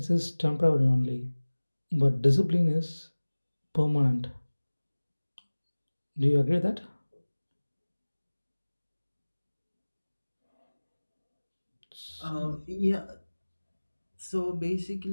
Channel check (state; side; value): inverted; both; correlation -1.00